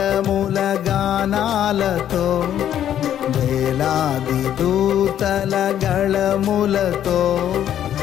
గానాలతో వేలాది దూతల గళములతో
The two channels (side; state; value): right; quieter; 10.6 dB